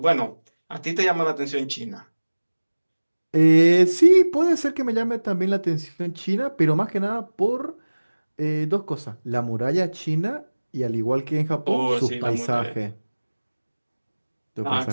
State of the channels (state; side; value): inverted; both; correlation -1.00